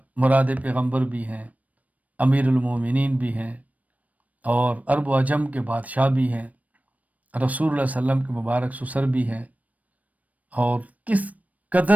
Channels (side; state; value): left; late; 0.071 ms